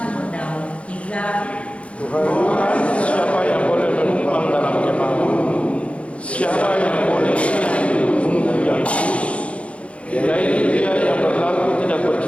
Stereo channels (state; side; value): late; right; 0.062 ms